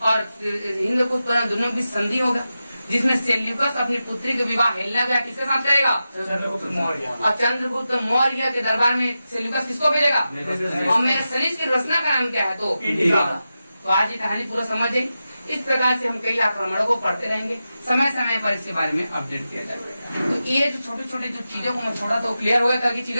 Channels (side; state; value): both; inverted; correlation -0.91